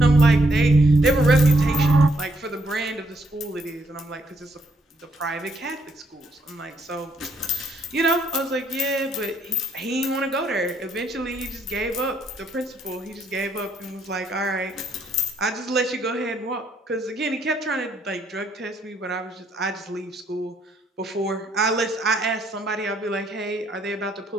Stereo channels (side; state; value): both; normal; correlation 0.72